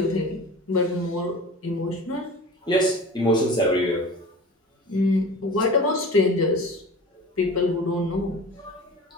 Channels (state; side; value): normal; both; correlation 0.37